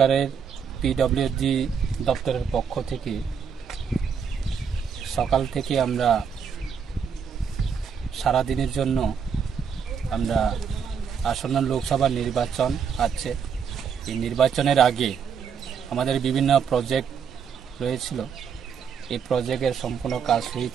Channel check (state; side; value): quieter; left; 6.9 dB